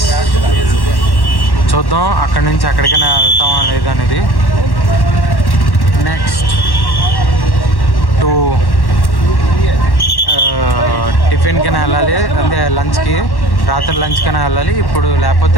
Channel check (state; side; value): late; right; 1.1 ms